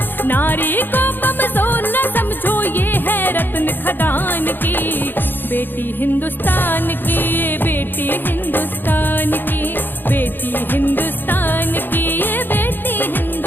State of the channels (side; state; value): right; late; 0.095 ms